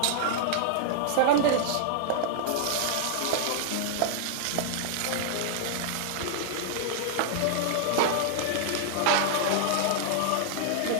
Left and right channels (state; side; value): different; both; correlation -0.01